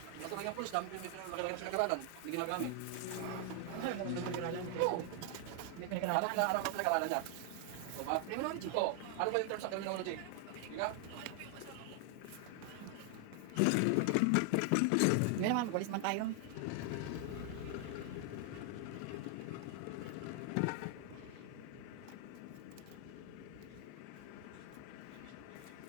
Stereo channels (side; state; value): both; different; correlation 0.00